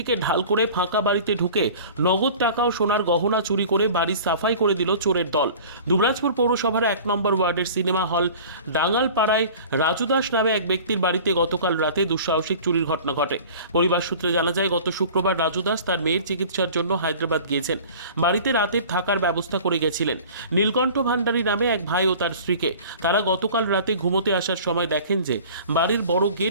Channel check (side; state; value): both; inverted; correlation -0.43